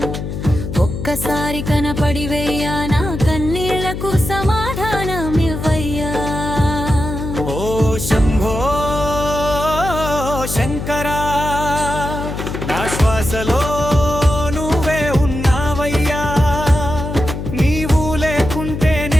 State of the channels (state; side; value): noise; left; hum, 6 dB below the sound